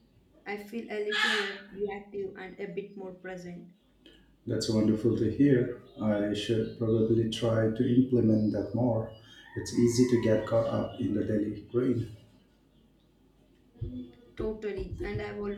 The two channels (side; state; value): both; identical; correlation 1.00